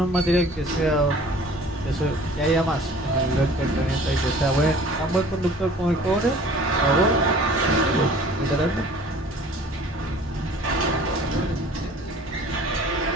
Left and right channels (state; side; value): normal; both; correlation 0.48